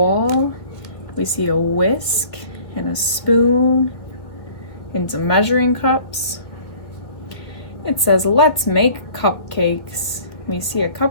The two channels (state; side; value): late; right; 1.6 ms